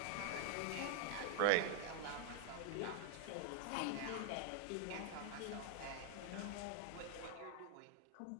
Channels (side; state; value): both; different; correlation 0.00